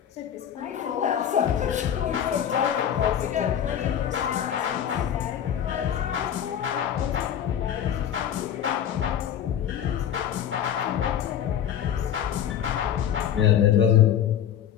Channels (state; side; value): quieter; right; 9.6 dB